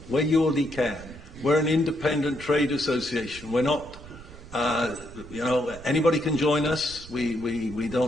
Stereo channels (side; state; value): right; noise; rumble, 17 dB below the sound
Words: We're ULD can. We're an independent trade association. We're not. Anybody can join us. We